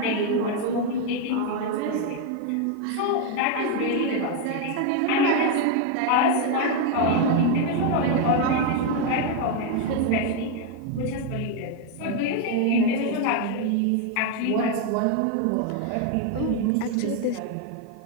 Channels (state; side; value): different; both; correlation 0.01